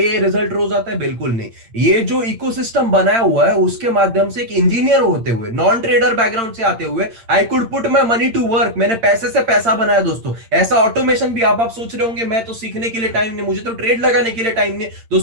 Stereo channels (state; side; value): late; left; 8.8 ms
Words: रिजल्ट रोज आता है? बिल्कुल नहीं। ये जो इकोसिस्टम बनाया हुआ है उसके माध्यम से, एक इंजीनियर होते हुए, नॉन ट्रेडर बैकग्राउंड से आते हुए, I could put my money to work. मैंने पैसे से पैसा बनाया दोस्तों। ऐसा ऑटोमेशन भी आप सोच रहे होंगे मैं तो सीखने के लिए टाइम नहीं, मुझे तो ट्रेड लगाने के लिए टाइम नहीं